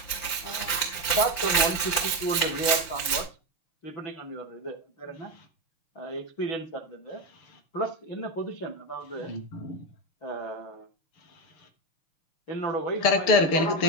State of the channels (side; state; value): right; late; 5.9 ms